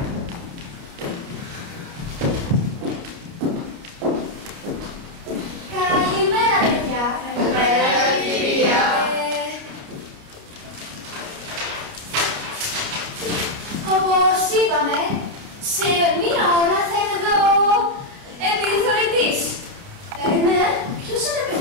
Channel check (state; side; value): late; left; 29 ms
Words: Καλημέρα, παιδιά. Καλημέρα, κυρία. Όπως είπαμε, σε μία ώρα θα είναι εδώ επιθεωρητής. Ναι, ποιος είναι